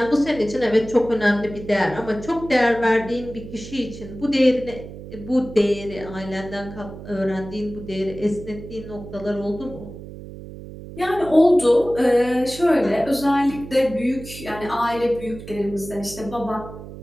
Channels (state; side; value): noise; right; hum, 13 dB below the sound